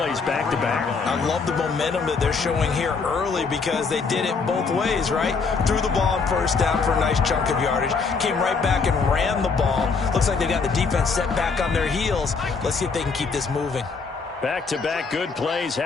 back-to-back. I love the momentum that they're showing here early because they did it both ways, right? Threw the ball on 1st down for a nice chunk of yardage. Came right back and ran the ball. Looks like they got the defense set back on their heels. Let's see if they can keep this moving. Back-to-back good plays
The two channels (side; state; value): right; quieter; 4.8 dB